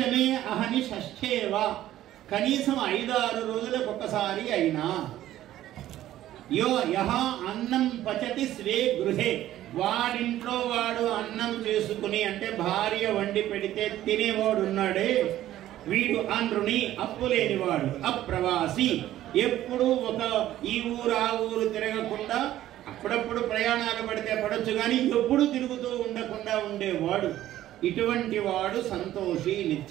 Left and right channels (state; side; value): quieter; left; 13.5 dB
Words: అహని షష్ఠేవా, కనీసం 5-6 రోజులకు ఒకసారి అయినా. యో యహ అన్నం పచతి స్వే గృహే, వాడింట్లో వాడు అన్నం చేసుకుని అంటే భార్య వండి పెడితే తినేవాడు ఉన్నాడే వీడు అనృణి, అప్పు లేనివాడు. అప్రవాసి, ఎప్పుడు ఒక ఈ ఊరు ఆ ఊరు తిరగకుండా, అప్పుడప్పుడు ప్రయాణాలు పడితే పడొచ్చు కానీ ఎప్పుడు తిరుగుతూ ఉండకుండా ఉండేవాడు. ఇటువంటి వాడు సంతోషి,